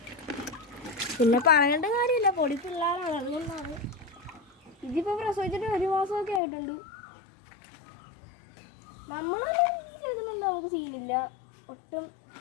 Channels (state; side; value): drops out; right; at 6.4 s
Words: പിന്നെ പറയേണ്ട കാര്യമില്ല, പൊടി പിള്ളേരാണ്, അതുകൊണ്ടാണ്. ഇതിപ്പോൾ പ്രസവിച്ചിട്ട് 1 മാസമൊക്കെ ആയിട്ടുണ്ട്. നമ്മളെല്ലാം ചെയ്തിട്ടുണ്ട്, നമുക്ക് സീനില്ല ഒട്ടും.